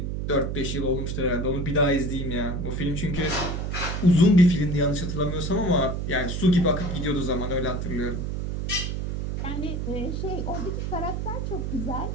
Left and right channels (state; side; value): noise; right; hum, 2 dB below the sound